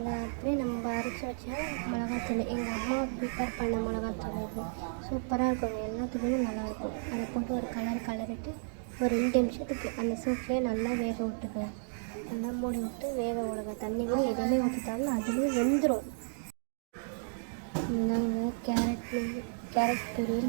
அப்படியே நம்ம அரைச்சி வச்சா மிளகாத்தூள் எங்கள் அம்மா ப்ரிப்பேர் பண்ண மிளகாத்தூள் இது சூப்பராக இருக்கும். எல்லாத்துக்குமே நல்லாயிருக்கும். அதை போட்டு ஒரு கலரிட்டு ஒரு 2 நிமிஷத்துக்கு அந்த சூப்லேயே நல்லா வேக விட்டுக்கலாம். நல்லா மூடி விட்டு வேக விடுங்க. தண்ணி கூட எதுவுமே ஊற்றிட்டாலும் அதுலேயே வெந்துடும். இந்தாங்க கேரட்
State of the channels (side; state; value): left; silent; digital silence